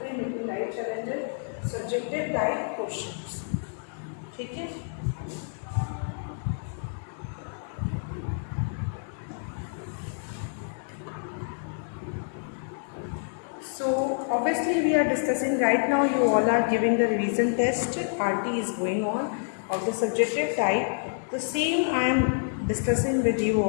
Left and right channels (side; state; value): right; silent; digital silence